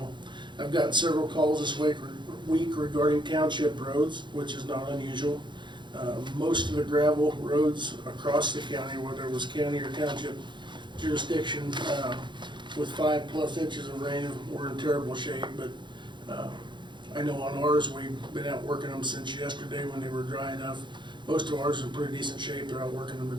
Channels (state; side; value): late; left; 0.23 ms